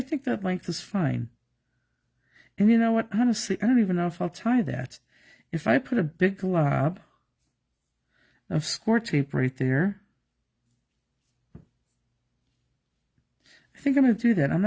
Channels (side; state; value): both; identical; correlation 1.00